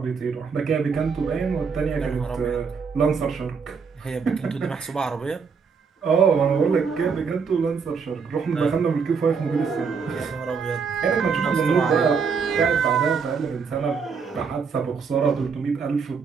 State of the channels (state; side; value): quieter; left; 5.7 dB